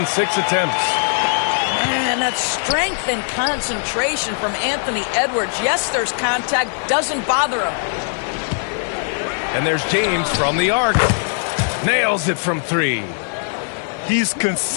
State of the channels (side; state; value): right; silent; digital silence